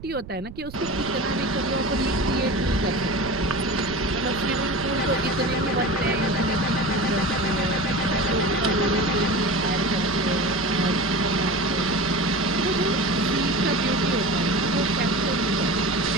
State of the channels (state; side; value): noise; right; rumble, 15 dB below the sound